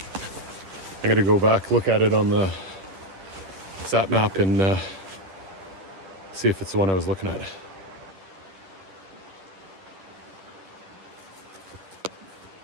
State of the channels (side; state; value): left; late; 10 ms